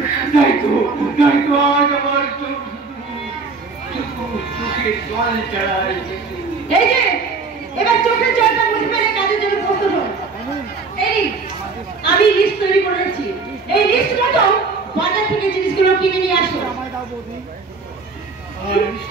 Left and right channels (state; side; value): quieter; left; 4.4 dB